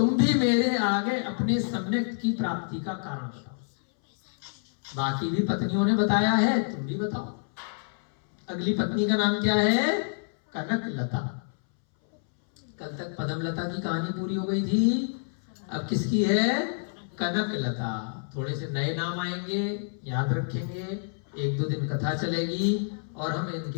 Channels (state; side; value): silent; right; 59 dB below the other